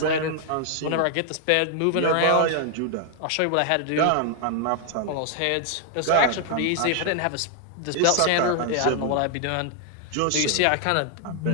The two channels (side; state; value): both; different; correlation 0.00